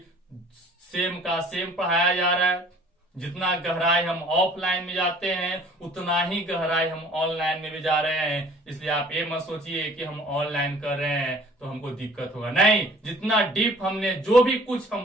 सेम का सेम पढ़ाया जा रहा है। जितना गहराई हम ऑफलाइन में जाते हैं, उतना ही गहराई हम ऑनलाइन में भी जा रहे हैं। इसलिए आप ये मत सोचिए कि हम ऑनलाइन कर रहे हैं तो हमको दिक्कत होगा, नहीं। जितना डीप हमने जो भी कुछ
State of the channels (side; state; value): both; normal; correlation 0.51